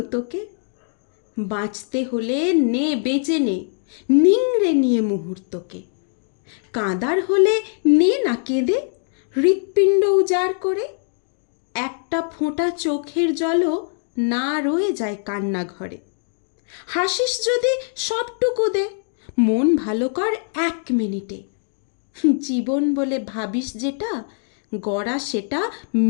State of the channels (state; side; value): silent; right; digital silence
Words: তোকে? বাঁচতে হলে নে বেঁচে নে, নিংড়ে নিয়ে মুহূর্তকে। কাঁদার হলে নে না কেঁদে, হৃৎপিণ্ড উজাড় করে। একটা ফোঁটা চোখের জলও না রয়ে যায় কান্না ঘরে। হাসিস যদি সবটুকু দে, মন ভালো কর 1 মিনিটে। জীবন বলে ভাবিস যেটা, গড়া সেটা